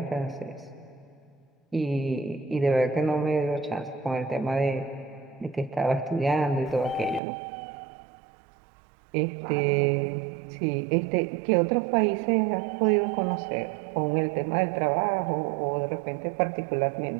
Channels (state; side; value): drops out; left; at 7.2 s